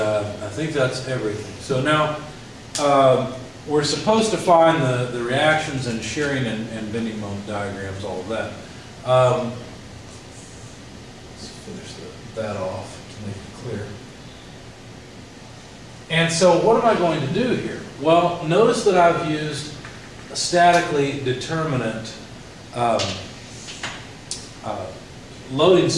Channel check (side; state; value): both; identical; correlation 1.00